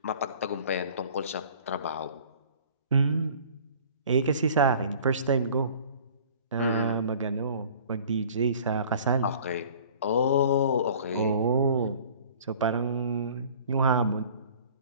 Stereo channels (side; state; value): both; inverted; correlation -0.48